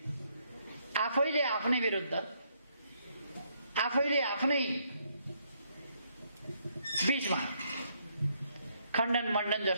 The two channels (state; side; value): inverted; both; correlation -0.73